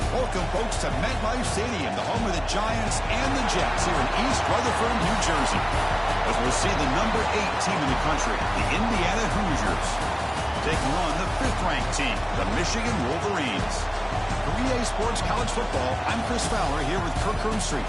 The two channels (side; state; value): both; identical; correlation 1.00